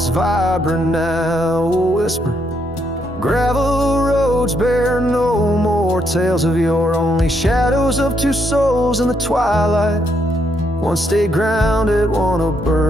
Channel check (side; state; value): both; normal; correlation 0.76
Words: vibrant, now a whisper. Gravel roads bear no more more tales of yore, only shadows of two souls in the twilight. One stayed grounded, one a